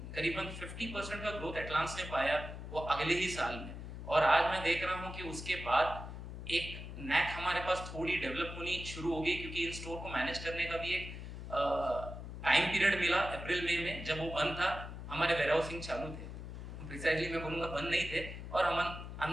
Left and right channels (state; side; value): noise; left; hum, 9 dB below the sound